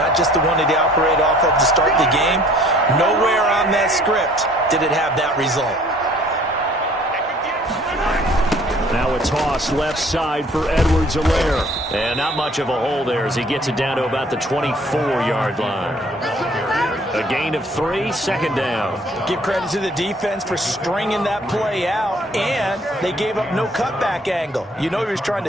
just the one that he operated off of to start the game. Nowhere on that script did it have that result. Now a toss left side for Edwards-Helaire. And not much of a hole there as he gets it down to about the 24-yard line. A gain of 3, second down. Give credit to the defense for stringing that play out, and they gave up no cutback angle. You know he was trying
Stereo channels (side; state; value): both; normal; correlation 0.56